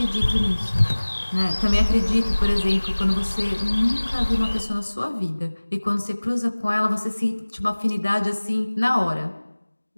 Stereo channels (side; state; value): both; inverted; correlation -1.00